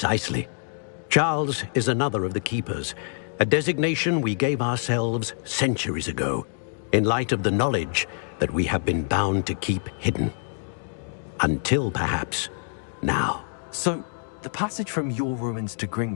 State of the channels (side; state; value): right; silent; digital silence